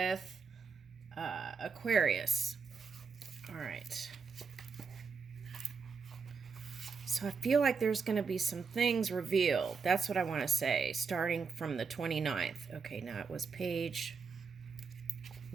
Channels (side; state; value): left; quieter; 5.3 dB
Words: Aquarius. All right. So I feel like there's going to be some things revealed. That's what I want to say, starting from the 29th. Okay, now it was page